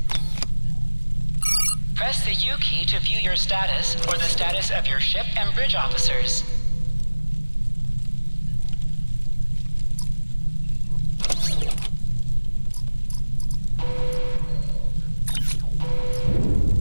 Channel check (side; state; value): both; inverted; correlation -1.00